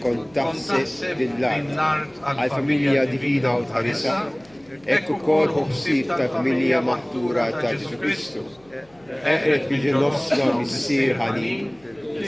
kont taħseb lill-art għall-familja divina u tħarisa, hekk ukoll ħsieb tal-familja maħtura ta' Ġesu Kristu. Eqret biġi nofsna missier ħanin,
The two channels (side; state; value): left; noise; hum, 30 dB below the sound